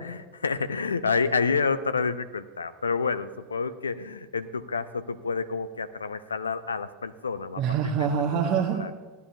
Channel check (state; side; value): inverted; both; correlation -0.50